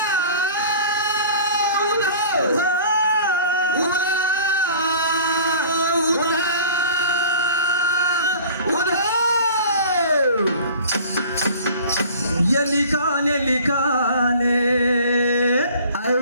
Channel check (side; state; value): both; inverted; correlation -0.45